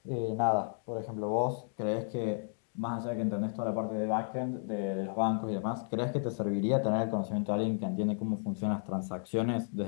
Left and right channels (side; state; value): right; silent; digital silence